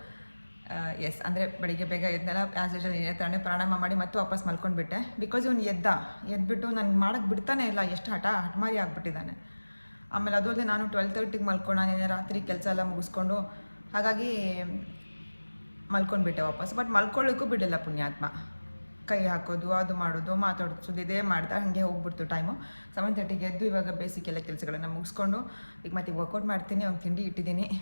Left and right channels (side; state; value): both; inverted; correlation -1.00